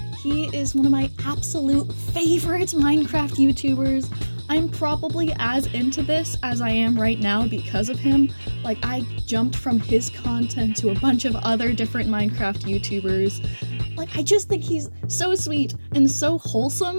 He is one of my absolute favorite Minecraft YouTubers. I'm probably as into this as I am right now because of him. Like, I jumped from his content to a bunch of other different Minecraft YouTubers. Like, I just think he's so sweet and so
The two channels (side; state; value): both; inverted; correlation -1.00